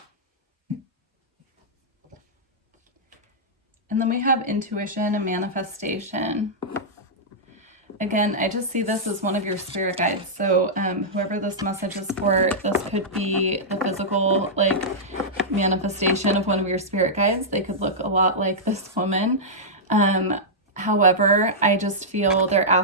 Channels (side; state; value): both; normal; correlation -0.10